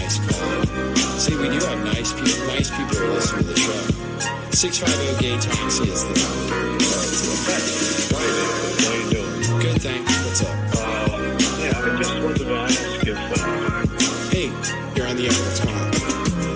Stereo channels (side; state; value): both; identical; correlation 1.00